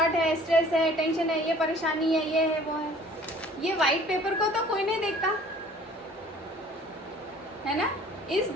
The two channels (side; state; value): both; normal; correlation 0.52